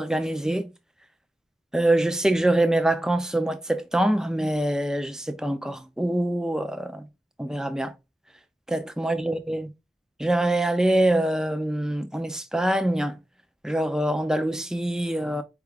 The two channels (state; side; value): normal; both; correlation 0.92